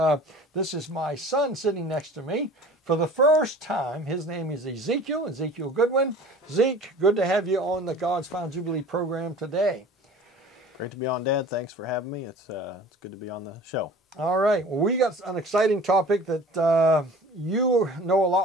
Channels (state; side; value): normal; both; correlation 0.44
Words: is my son sitting next to me for the first time. His name is Ezekiel Goodwin. Zeke, good to have you on the God's Final Jubilee program today. Great to be on, Dad. Thanks for having me. It's good to be on the show. All right. Well, we got an exciting topic that you know a